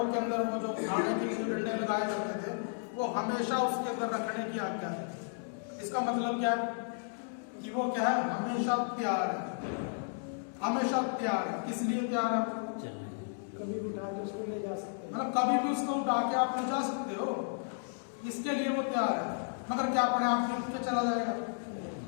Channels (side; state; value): right; silent; digital silence